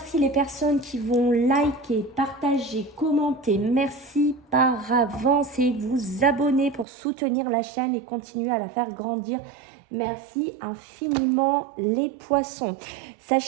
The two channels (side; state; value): left; drops out; at 6.9 s